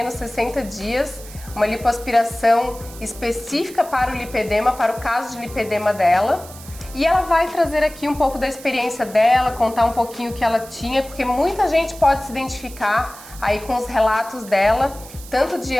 60 dias, uma lipoaspiração específica para o lipedema, para o caso de lipedema dela. E ela vai trazer aqui um pouco da experiência dela, contar um pouquinho o que ela tinha, porque muita gente pode se identificar aí com os relatos dela, tanto de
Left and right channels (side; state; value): right; noise; hiss, 17 dB below the sound